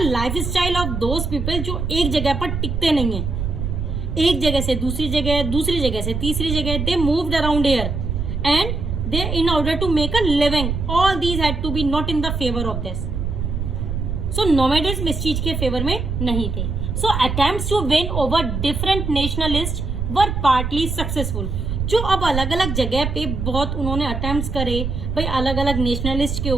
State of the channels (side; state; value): right; noise; rumble, 3 dB below the sound